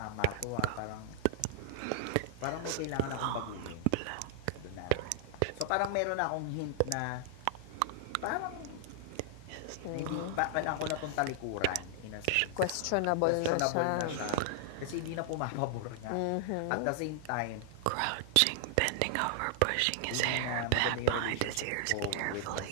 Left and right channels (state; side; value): different; both; correlation 0.00